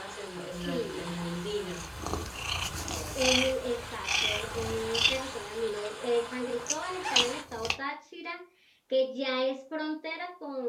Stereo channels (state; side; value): identical; both; correlation 1.00